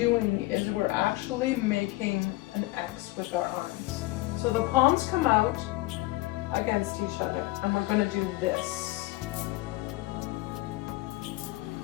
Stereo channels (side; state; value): right; quieter; 19.8 dB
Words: is we're actually making an X with our arms. So the palms come out against each other and we're going to do this.